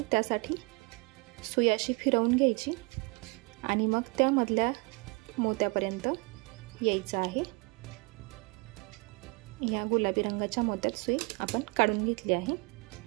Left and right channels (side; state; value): left; quieter; 29.4 dB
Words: त्यासाठी सुई अशी फिरवून घ्यायची आणि मग त्या मधल्या मोत्यापर्यंत यायचं आहे। या गुलाबी रंगाच्या मोत्यात सुई आपण काढून घेतली आहे